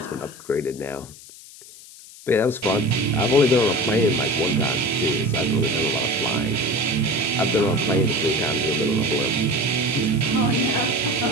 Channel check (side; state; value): left; noise; hiss, 19 dB below the sound